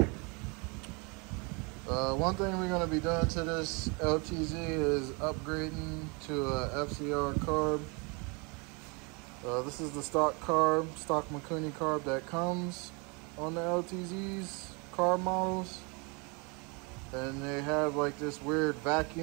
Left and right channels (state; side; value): quieter; left; 31.0 dB